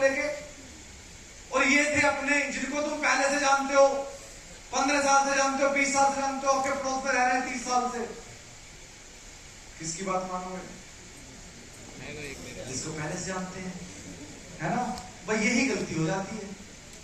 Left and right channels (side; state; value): both; identical; correlation 1.00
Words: लेके, और ये थे अपने जिनको तुम पहले से जानते हो, 15 साल से जानते हो, 20 साल से जानते हो, आपके पड़ोस में रह रहे हैं 30 साल से। किसकी बात मानोगे, जिसको पहले से जानते हैं, है ना। भाई यही गलती हो जाती है,